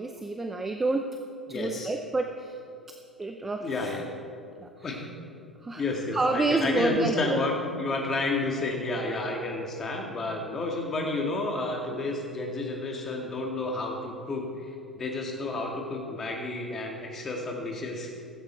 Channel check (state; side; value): normal; both; correlation 0.54